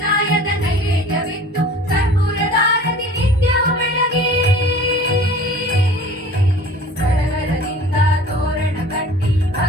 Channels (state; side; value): normal; both; correlation 0.44